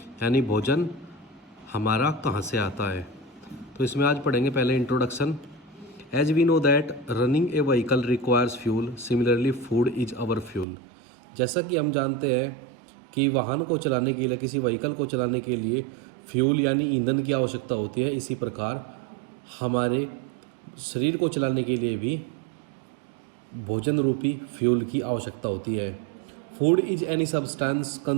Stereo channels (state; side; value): drops out; left; at 10.7 s